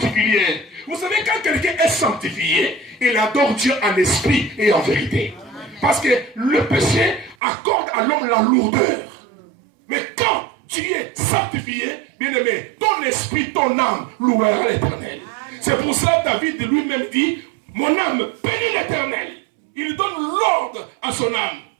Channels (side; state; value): left; drops out; at 7.4 s